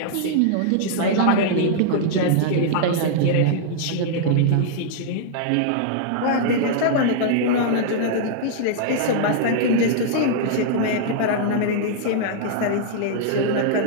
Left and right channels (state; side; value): different; both; correlation -0.01